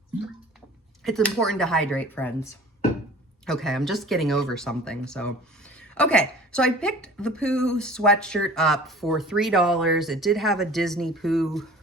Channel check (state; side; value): normal; both; correlation 0.45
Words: It's important to hydrate, friends. Okay, I'm just getting over something, so. Okay, so I picked the Pooh sweatshirt up for $3. It did have a Disney Pooh.